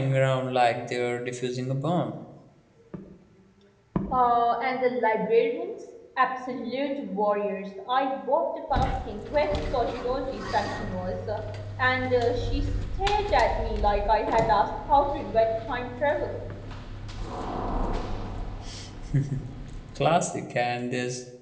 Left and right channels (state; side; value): identical; both; correlation 1.00